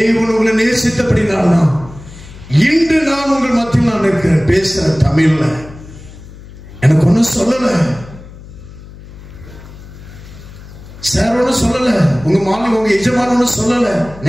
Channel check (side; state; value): left; noise; hum, 17 dB below the sound